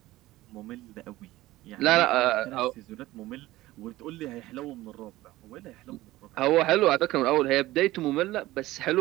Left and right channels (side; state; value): left; quieter; 17.2 dB